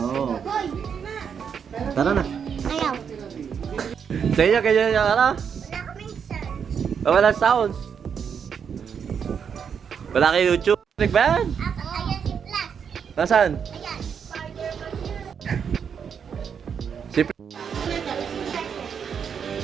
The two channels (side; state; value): left; quieter; 7.1 dB